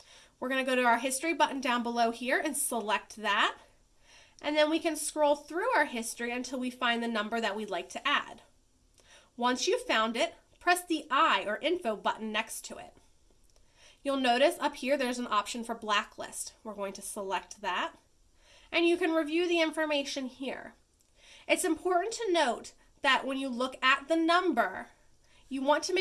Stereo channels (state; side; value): identical; both; correlation 1.00